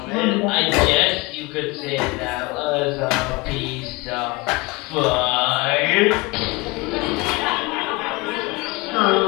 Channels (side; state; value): right; quieter; 24.0 dB